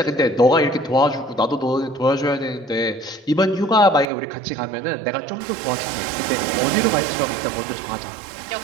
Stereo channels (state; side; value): drops out; left; at 4.0 s